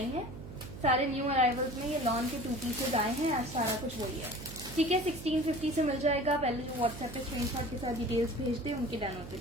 है। सारे न्यू अराइवल्स में ये लॉन के 2 पीसेज आए हैं, आज सारा कुछ वही है। ठीक है, 1650 से मिल जाएगा। पहले जो व्हाट्सएप पे स्क्रीनशॉट के साथ डिटेल्स भेज दे, उनके डन होते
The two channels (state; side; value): noise; right; hum, 12 dB below the sound